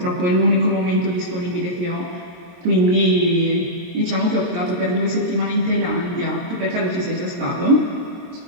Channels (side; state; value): left; late; 23 ms